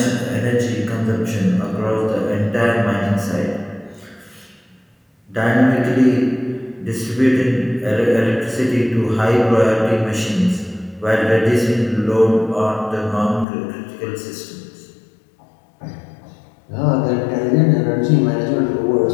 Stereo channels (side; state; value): right; drops out; at 13.5 s